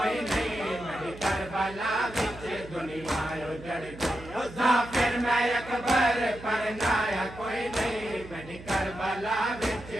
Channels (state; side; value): noise; right; hum, 16 dB below the sound